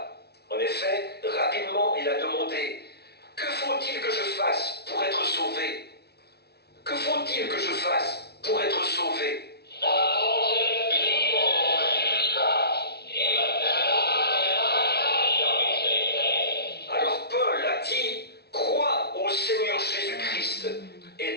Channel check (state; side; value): late; right; 0.48 ms